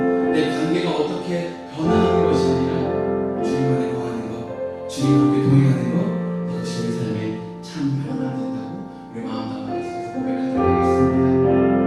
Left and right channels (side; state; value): both; identical; correlation 1.00